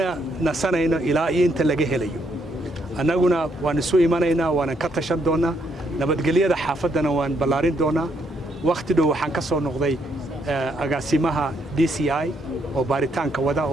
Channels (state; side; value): normal; both; correlation 0.74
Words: nasanayno ilaa inta laga helayo annaguna waan isu imanaynaa waan ka tashan doonaa nabadgelyada xaafadana waan ballaarin doonaa waqti dhow waxaan ka soo noqday agaasimaha DCI oo baaritaanka wada